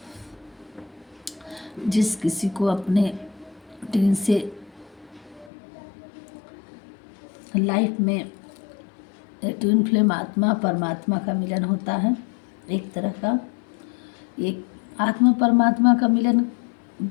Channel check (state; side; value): drops out; right; at 5.5 s